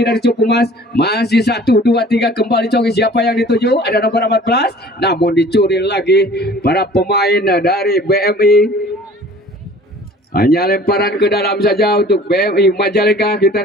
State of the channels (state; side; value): normal; both; correlation 0.48